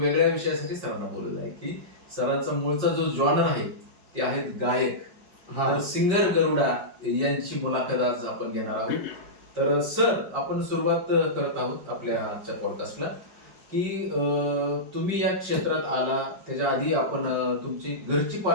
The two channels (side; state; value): left; late; 5.2 ms